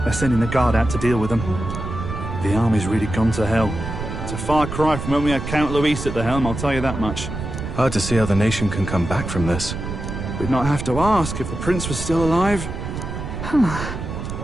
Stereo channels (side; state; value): right; noise; rumble, 6 dB below the sound